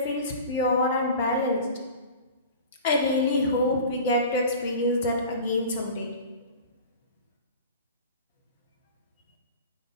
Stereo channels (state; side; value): inverted; both; correlation -0.37